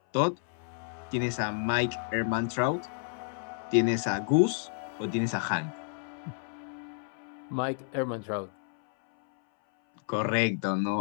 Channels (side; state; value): right; silent; 57 dB below the other